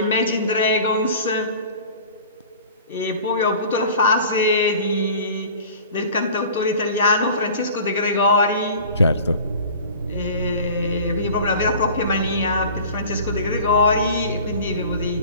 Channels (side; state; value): both; inverted; correlation -0.43